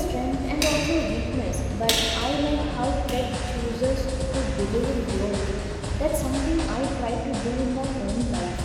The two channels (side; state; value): both; identical; correlation 1.00